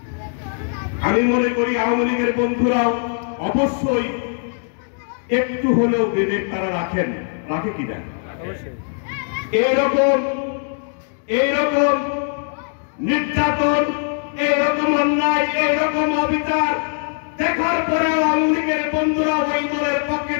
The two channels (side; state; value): right; silent; 57 dB below the other